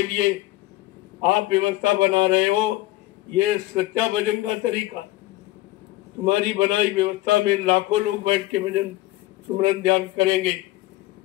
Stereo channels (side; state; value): right; quieter; 17.6 dB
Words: लिए आप व्यवस्था बना रहे हो, ये सच्चा भजन का तरीका। तुम्हारी बनाई व्यवस्था में लाखों लोग बैठ के भजन सुमरन ध्यान करेंगे,